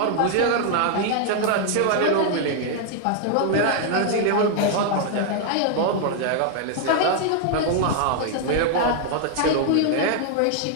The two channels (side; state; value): both; different; correlation 0.00